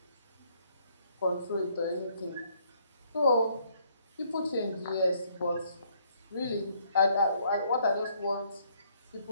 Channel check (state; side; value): inverted; both; correlation -0.67